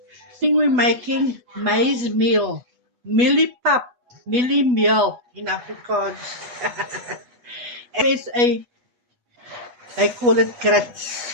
We're making maize meal, millipap, millie meal in Afrikaans. USA, they call it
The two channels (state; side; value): late; left; 8.2 ms